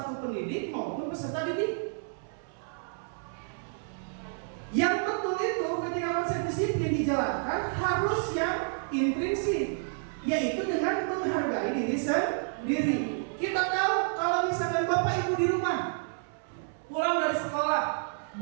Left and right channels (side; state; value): left; silent; 58 dB below the other